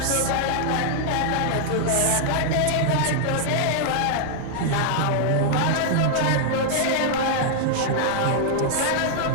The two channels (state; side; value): different; both; correlation 0.00